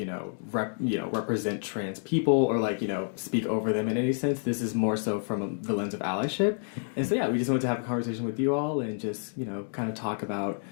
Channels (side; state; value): right; silent; digital silence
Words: represent trans people or speak over them in any sense. This is more so from the lens of allyship. And so, we just wanted to have a conversation with you all and just, kind of talk about